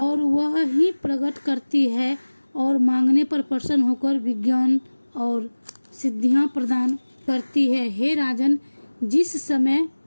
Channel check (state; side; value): inverted; both; correlation -1.00